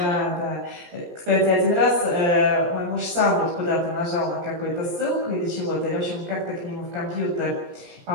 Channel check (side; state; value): left; late; 17 ms